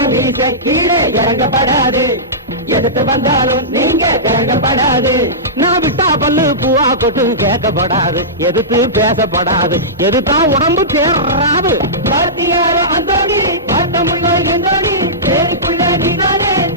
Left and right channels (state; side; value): normal; both; correlation -0.17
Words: வீச கீழே இறங்கப்படாது, எதுக்கு வந்தாலும் நீங்க இறங்கப்படாது. நான் விட்டா பல்லு பூவா கொட்டு கேட்கப்படாது, எதுக்கு பேசப்படாது, எதுதான் உடம்பு தேர்றாது. அந்தோணி பார்த்தமுள்ள எந்தோணி, தேடிக்குள்ள நீதானே